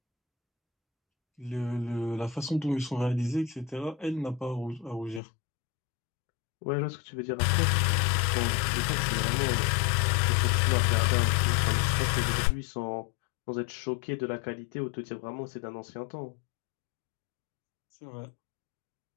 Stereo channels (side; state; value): right; drops out; at 5.2 s